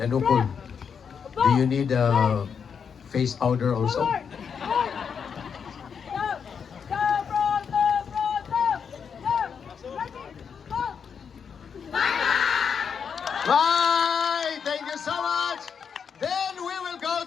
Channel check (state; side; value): quieter; right; 6.8 dB